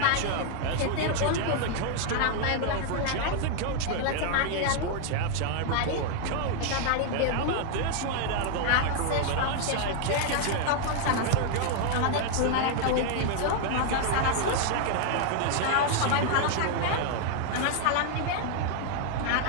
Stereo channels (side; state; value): both; different; correlation 0.00